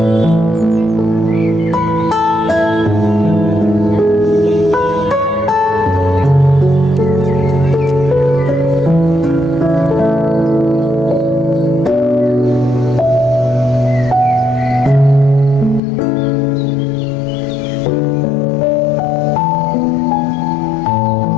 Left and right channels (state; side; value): drops out; right; at 15.8 s